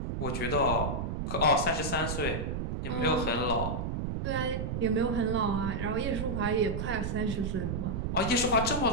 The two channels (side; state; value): right; noise; rumble, 2 dB below the sound